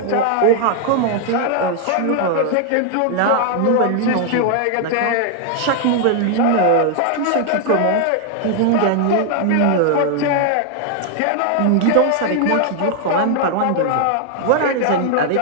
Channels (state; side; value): different; both; correlation 0.00